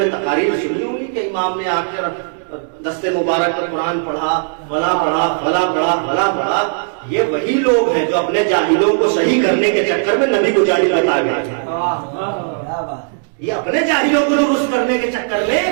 تقاریر سنی ہوگی کہ امام نے آ کر دستے مبارک پر قرآن پڑھا، فلاں پڑھا، فلاں پڑھا، فلاں پڑھا۔ یہ وہی لوگ ہیں جو اپنے جاہلوں کو صحیح کرنے کے چکر میں نبی کو جاہل بتا گئے، یہ اپنے جاہلوں کو درست کرنے کے چکر میں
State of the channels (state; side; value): silent; left; digital silence